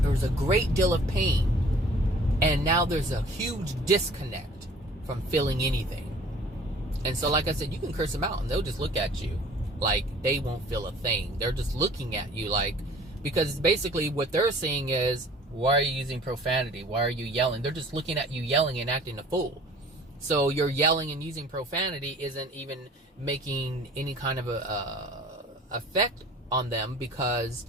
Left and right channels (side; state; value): both; normal; correlation 0.50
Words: There's a great deal of pain. And now there's a huge disconnect from feeling anything. And so, like I said, you can curse them out and they'll just look at you like they won't feel a thing. They're just looking at you like, because basically what they're saying is, why are you using profanity? Why are you yelling? They're just looking at you yelling and acting a fool. So your yelling and using profanity isn't even making any kind of a effect on them,